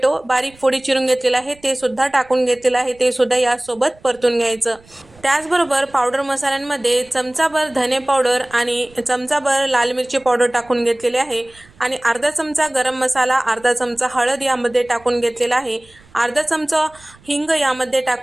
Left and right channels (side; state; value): right; noise; rumble, 27 dB below the sound